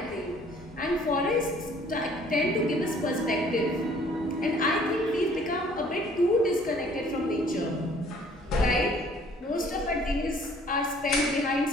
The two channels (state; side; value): normal; both; correlation 0.57